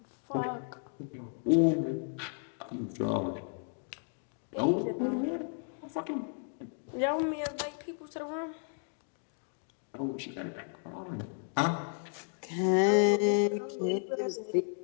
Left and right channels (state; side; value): silent; right; 55 dB below the other